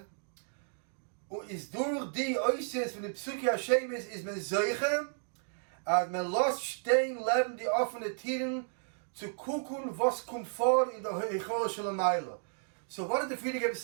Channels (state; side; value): silent; left; digital silence